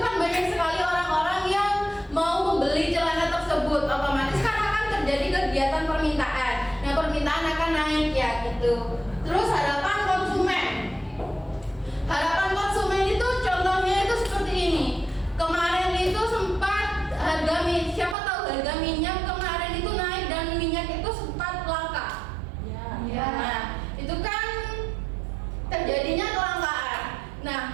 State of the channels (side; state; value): left; drops out; at 18.2 s